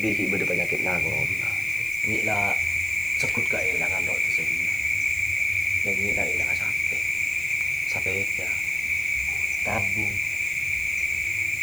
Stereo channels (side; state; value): left; noise; hiss, 15 dB below the sound